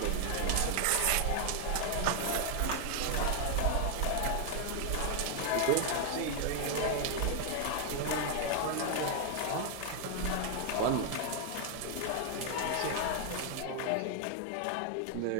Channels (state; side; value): different; both; correlation 0.00